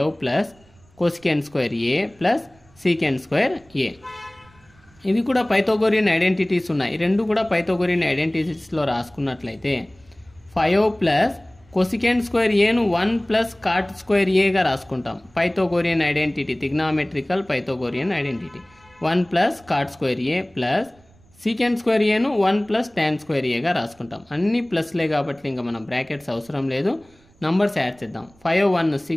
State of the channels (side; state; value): right; noise; rumble, 30 dB below the sound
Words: plus cosecant square A plus secant square A. ఇవి కూడా పైథాగోరియన్ ఐడెంటిటీస్ ఉన్నాయి. రెండు కూడా పైథాగోరియన్ ఐడెంటిటీస్లో రాసుకున్నట్లయితే 5 ప్లస్ కొసికెంట్ స్క్వేర్ ఏను 1 ప్లస్ కాట్ స్క్వేర్ ఏగా రాసుకుంటాం. Pythagorean identity, trigonometrical Pythagorean identity. 1 plus cot square A plus secant square ఏను 1 ప్లస్ టాన్ స్క్వేర్ ఏగా రాసుకుంటాం. అన్ని ప్లస్లే కాబట్టి ఇంకా మనం బ్రాకెట్స్ అవసరం లేదు. నంబర్స్ యాడ్ చేద్దాం. 5 1